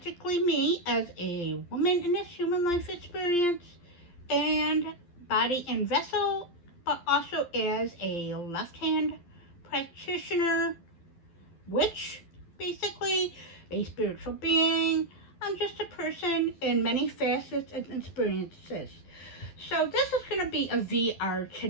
me as a woman in this human life experience and body and vessel, but also as a left hand practitioner, witch, basically a spiritual being. I'm just a person in many facets and experiences. So this is going to be a VR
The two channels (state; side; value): late; right; 12 ms